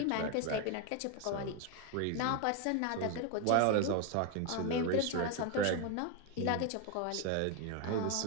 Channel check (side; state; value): both; different; correlation 0.01